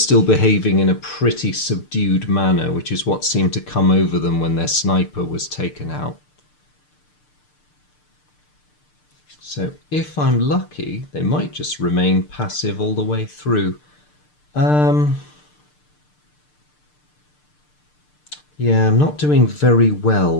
behaving in a pretty subdued manner, which is what seemed to come over them when their sniper was taken out. So if I'm lucky, they might just remain passive all the way through. Yeah, I'm not doing very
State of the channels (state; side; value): late; right; 6.7 ms